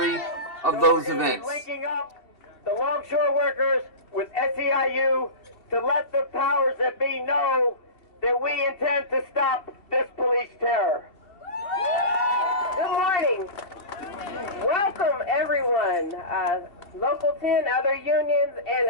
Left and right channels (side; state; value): right; late; 2.7 ms